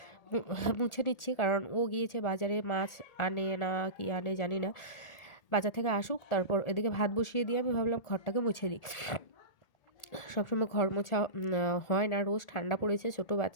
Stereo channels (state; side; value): late; right; 1.8 ms